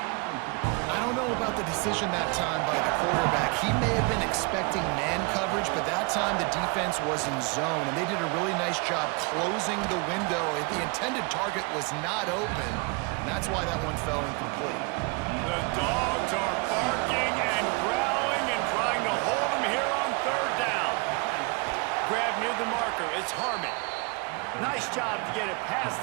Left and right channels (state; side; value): quieter; left; 30.5 dB